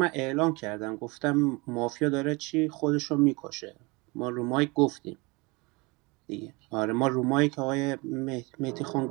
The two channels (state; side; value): quieter; left; 26.4 dB